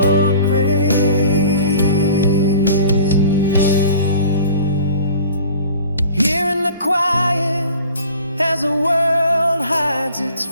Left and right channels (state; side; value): inverted; both; correlation -0.46